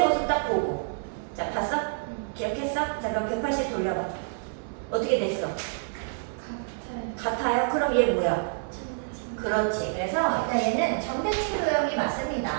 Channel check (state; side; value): silent; left; 60 dB below the other